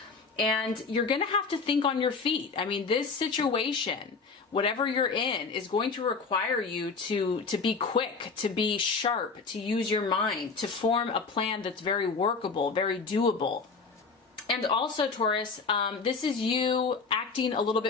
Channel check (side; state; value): right; quieter; 4.7 dB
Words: And you're going to have to think on your feet. This situation, whatever you're in, is going to require you to be quick, to be sharp, to use your mind, to form a plan that's very workable, very doable. And also, Taurus, this is you acting a little